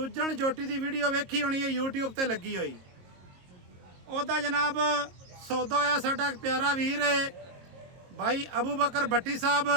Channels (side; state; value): left; late; 22 ms